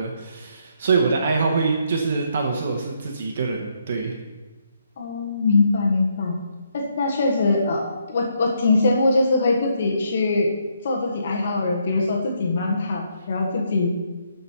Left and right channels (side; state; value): both; inverted; correlation -0.74